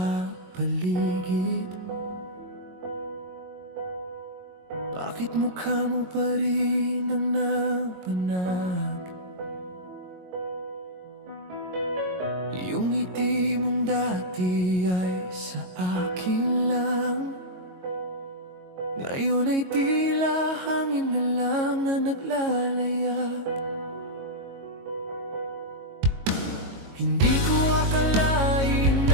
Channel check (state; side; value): late; left; 22 ms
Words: paligid, bakit mukha mo pa rin ang napanag? Yung ngiti mong dati ay sa akin lang, ngayon ay tila hangin na lang na naglalayag. Hindi ko akalain